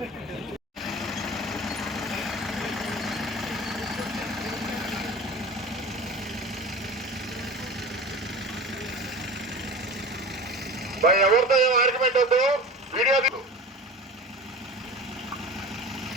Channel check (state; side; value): normal; both; correlation 0.35